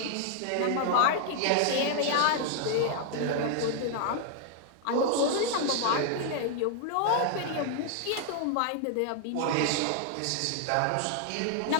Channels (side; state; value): both; different; correlation 0.00